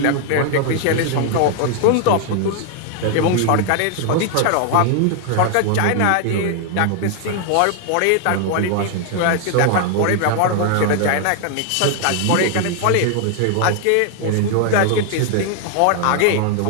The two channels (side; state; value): both; different; correlation 0.00